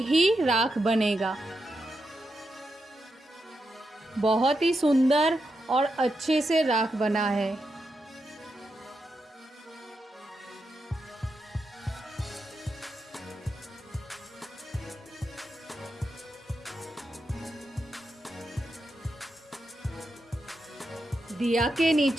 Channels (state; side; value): normal; both; correlation 0.86